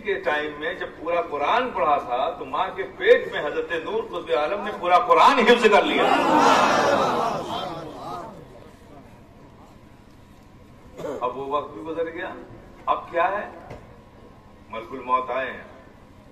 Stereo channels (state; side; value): identical; both; correlation 1.00